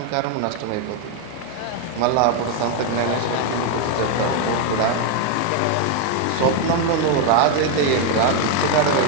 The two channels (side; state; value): both; different; correlation 0.01